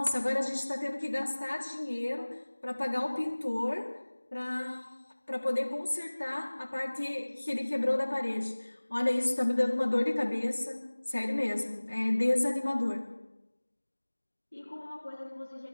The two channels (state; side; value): inverted; both; correlation -1.00